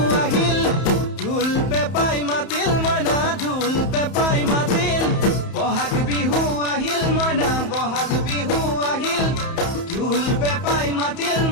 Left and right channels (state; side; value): late; right; 31 ms